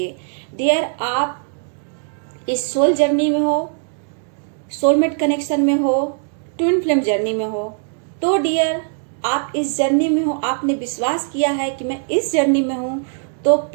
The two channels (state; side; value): silent; left; digital silence